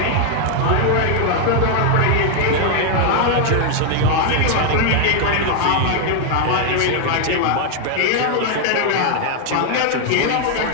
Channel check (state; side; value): different; both; correlation 0.00